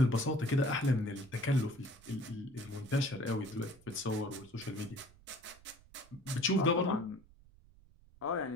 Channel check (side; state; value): right; noise; rumble, 25 dB below the sound